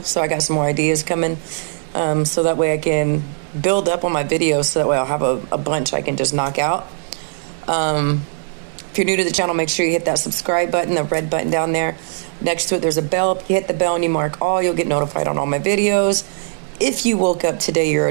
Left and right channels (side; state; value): left; silent; digital silence